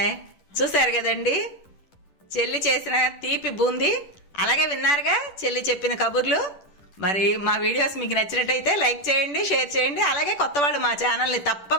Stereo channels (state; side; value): late; right; 10 ms